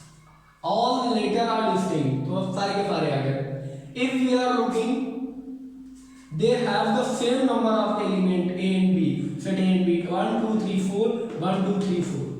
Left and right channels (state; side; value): identical; both; correlation 1.00